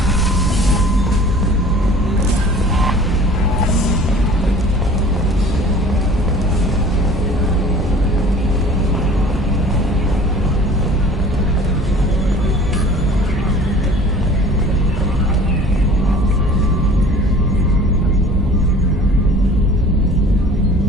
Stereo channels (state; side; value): normal; both; correlation 0.47